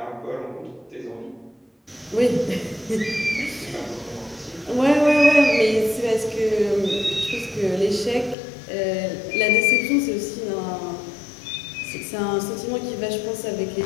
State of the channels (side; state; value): right; drops out; at 8.3 s